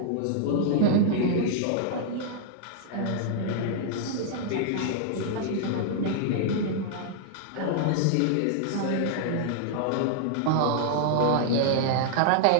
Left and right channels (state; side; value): different; both; correlation -0.01